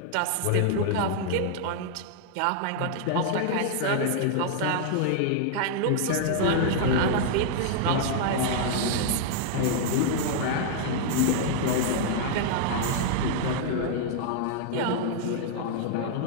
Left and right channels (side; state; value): both; different; correlation -0.01